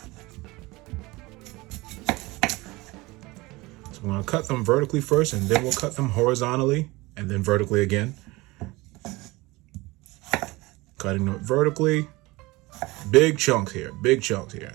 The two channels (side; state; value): left; quieter; 22.0 dB